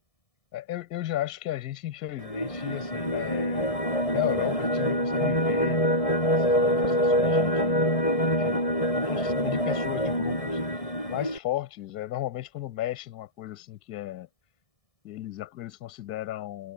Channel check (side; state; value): right; late; 1.7 ms